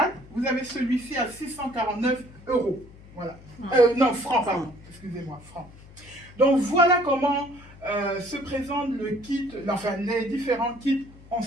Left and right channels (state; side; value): noise; left; hum, 21 dB below the sound